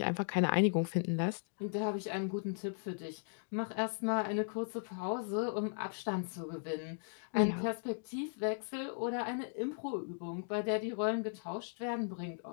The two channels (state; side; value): silent; right; digital silence